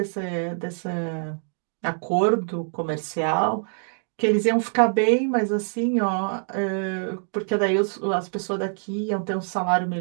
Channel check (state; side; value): silent; left; digital silence